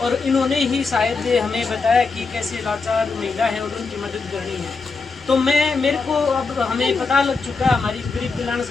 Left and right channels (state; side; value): quieter; right; 4.4 dB